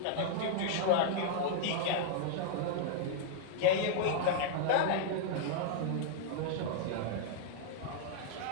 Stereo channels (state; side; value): different; both; correlation -0.01